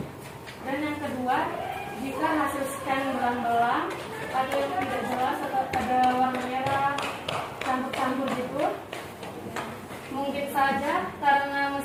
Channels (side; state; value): both; identical; correlation 1.00